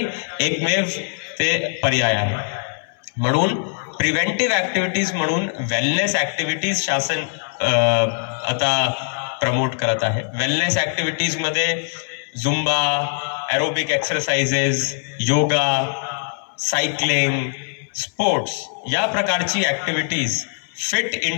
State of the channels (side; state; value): right; silent; 61 dB below the other